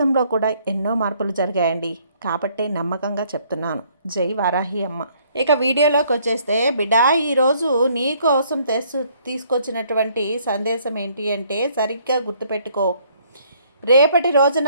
కూడా ఎన్నో మార్పులు జరిగాయండి, కాబట్టే నమ్మకంగా చెప్తున్నాను. జై వారాహి అమ్మ. ఇక వీడియోలోకి వచ్చేస్తే, బిడ్డ ఈరోజు నీ కోసం తీసుకొచ్చినటువంటి సందేశం ఏంటి అంటే, సరిగ్గా గుర్తుపెట్టుకో. రేపటి రోజున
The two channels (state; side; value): inverted; both; correlation -0.64